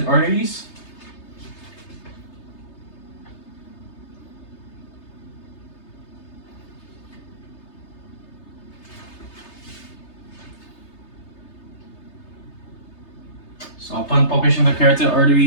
arteries. So upon palpation of the carotid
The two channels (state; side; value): late; right; 3.3 ms